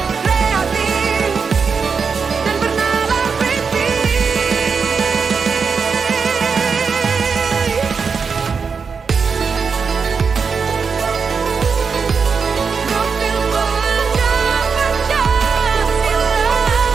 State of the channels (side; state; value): left; quieter; 5.5 dB